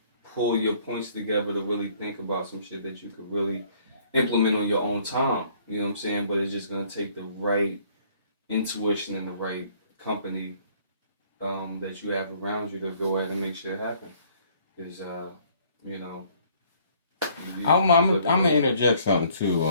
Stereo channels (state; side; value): inverted; both; correlation -0.60